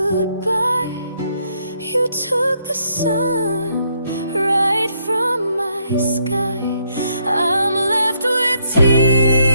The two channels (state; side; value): inverted; both; correlation -0.73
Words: You took the sun right from my sky. I'm left with